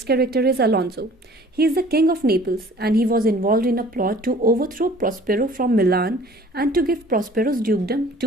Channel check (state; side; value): normal; both; correlation 0.50